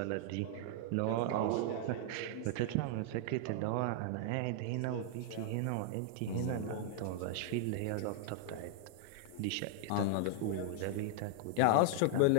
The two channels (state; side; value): different; both; correlation -0.01